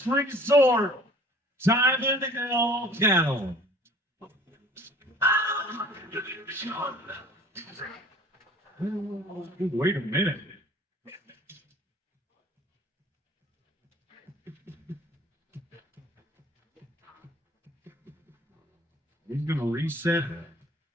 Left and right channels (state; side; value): normal; both; correlation 0.50